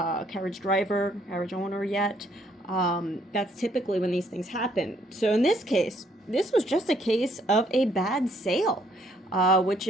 carriage driver, carriage owner yet. That's typically when these things happen. So in this case, this was just a case of a bad sale, which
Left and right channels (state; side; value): normal; both; correlation 0.67